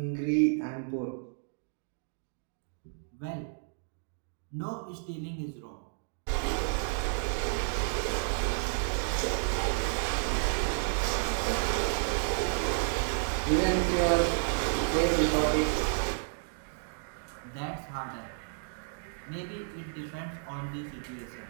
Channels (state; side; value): silent; left; digital silence